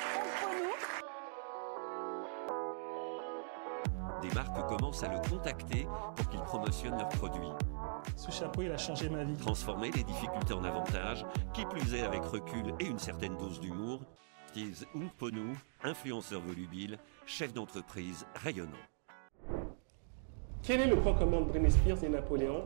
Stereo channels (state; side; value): silent; left; digital silence